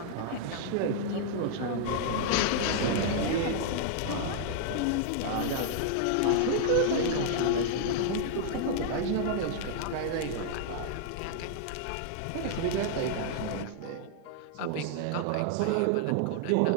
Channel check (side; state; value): both; different; correlation -0.01